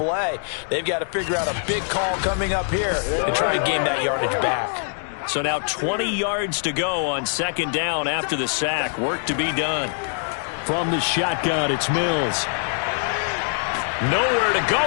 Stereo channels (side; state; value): right; silent; digital silence